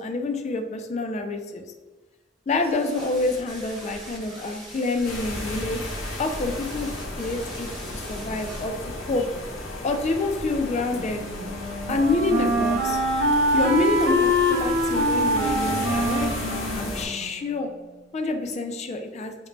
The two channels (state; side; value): normal; both; correlation 0.31